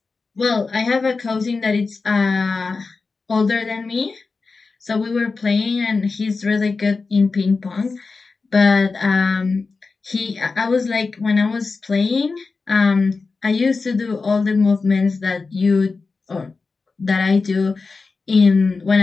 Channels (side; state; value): right; quieter; 4.2 dB